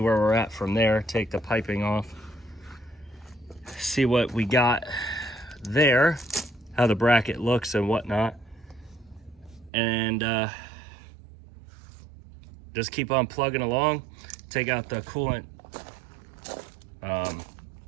we're at from there, take the piping off, see what we got there, how the bracket looks and whatnot, and just keep on plugging along. Take out the coolant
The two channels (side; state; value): left; drops out; at 9.7 s